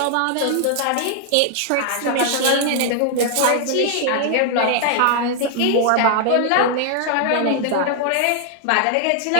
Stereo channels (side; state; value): both; different; correlation 0.00